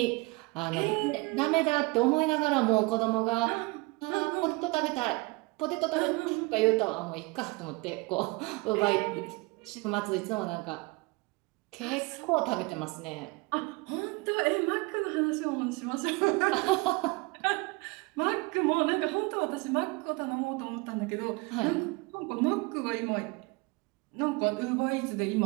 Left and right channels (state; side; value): quieter; left; 25.2 dB